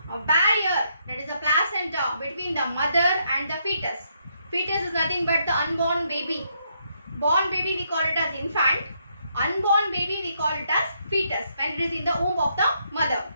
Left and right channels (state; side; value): inverted; both; correlation -0.75